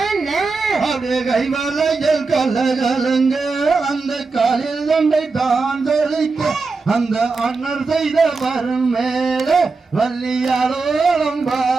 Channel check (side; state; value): left; quieter; 4.1 dB